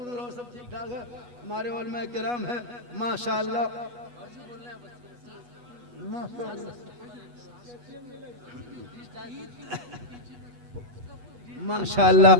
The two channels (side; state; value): left; late; 8.2 ms